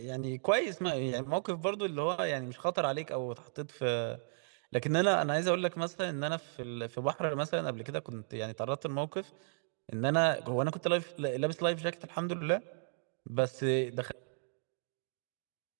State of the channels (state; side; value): silent; left; digital silence